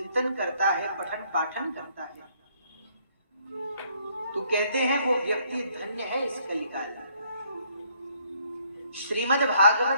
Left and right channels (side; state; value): both; inverted; correlation -0.66